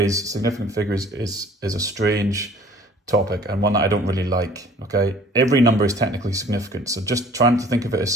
significant figures is a strange topic and one that I don't really like. Okay, every number is technically significant, so just trying to think of it as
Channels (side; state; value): both; normal; correlation 0.51